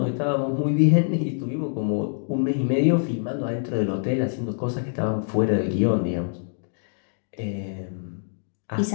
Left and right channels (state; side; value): silent; right; digital silence